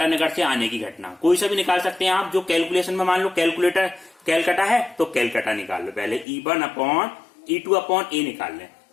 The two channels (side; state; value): right; drops out; at 6.2 s